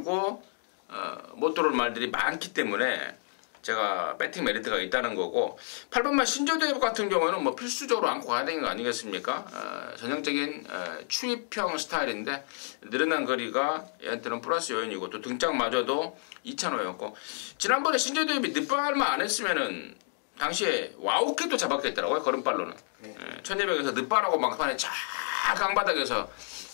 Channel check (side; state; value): right; silent; 58 dB below the other